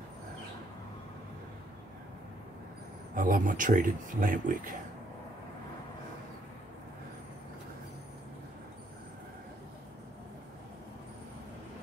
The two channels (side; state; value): both; normal; correlation 0.70